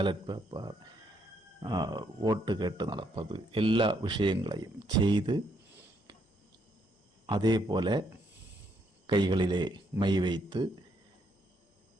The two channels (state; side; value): normal; both; correlation 0.73